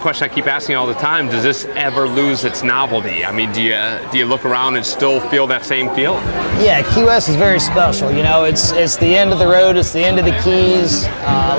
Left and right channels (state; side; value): inverted; both; correlation -1.00